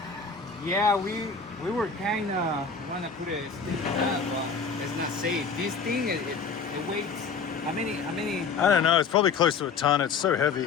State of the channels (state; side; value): quieter; right; 5.4 dB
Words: Yeah, we were kind of wanna put a stick on that, but it's not safe. This thing it weighs how many? I don't know. It's probably close to a ton. It's so